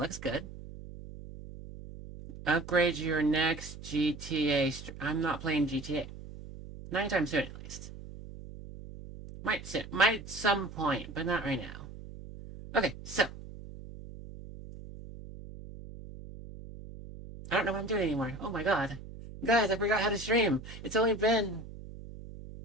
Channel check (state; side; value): noise; right; hum, 13 dB below the sound